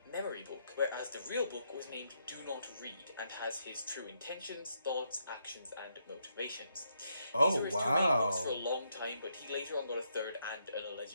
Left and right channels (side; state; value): both; inverted; correlation -0.78